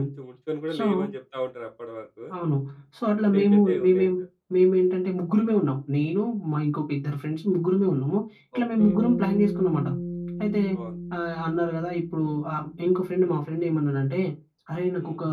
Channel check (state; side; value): identical; both; correlation 1.00